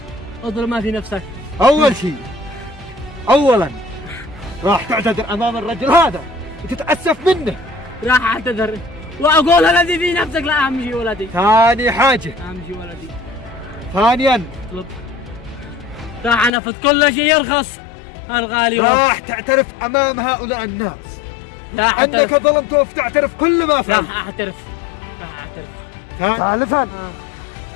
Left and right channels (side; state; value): right; drops out; at 16.5 s